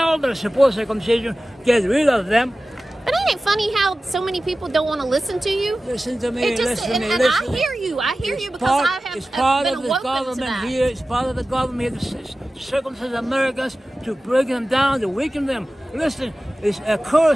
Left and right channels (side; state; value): both; normal; correlation 0.95